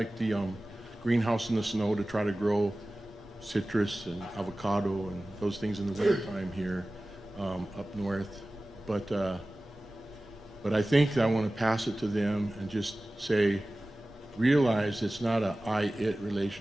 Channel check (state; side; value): normal; both; correlation 0.97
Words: the greenhouse in the snow to try to grow citrus and avocado and those things in the wintertime here up north. But I think I want to pass it to them and just say, realize it's not a I-it